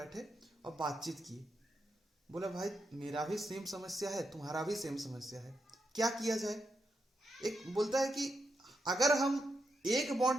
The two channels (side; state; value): both; normal; correlation 0.84